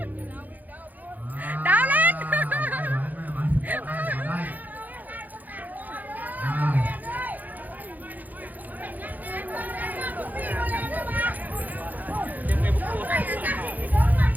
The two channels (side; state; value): left; late; 0.082 ms